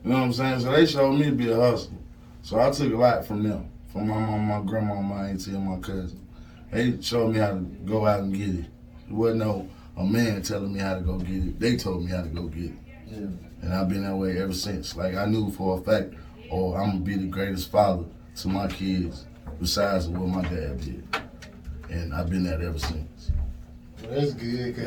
You know what I'm saying? So they showed me to be a hustler. So I took a lot from them. From my mom, my grandma, my auntie, and my cousin. They showed me how to go out and get it. There wasn't a man telling me how to go get it. They told me how to go get it. Yeah. And I've been that way ever since. Like, I knew for a fact, I'm going to be the greatest father to my kids besides what my dad did. And I've been that ever since. Well, that's good,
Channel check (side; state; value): both; identical; correlation 1.00